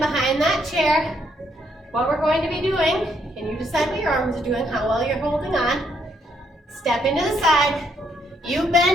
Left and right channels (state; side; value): normal; both; correlation 0.73